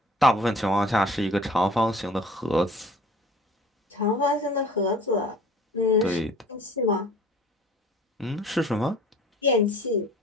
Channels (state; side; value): normal; both; correlation 0.48